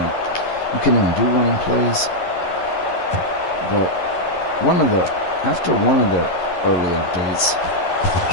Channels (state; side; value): late; right; 11 ms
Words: you couldn't even do running plays. But after one of the early updates,